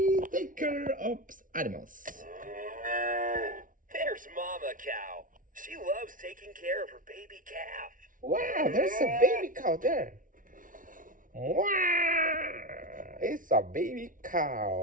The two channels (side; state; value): left; late; 0.38 ms